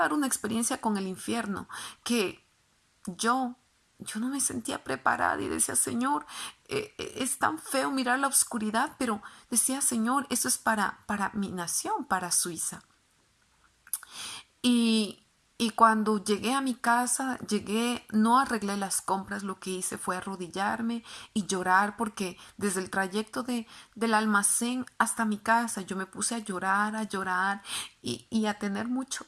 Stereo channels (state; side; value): identical; both; correlation 1.00